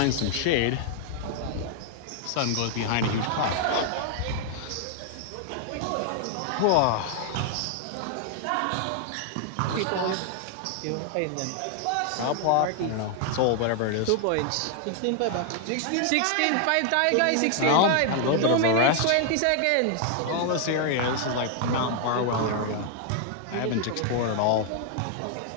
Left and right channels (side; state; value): both; different; correlation 0.00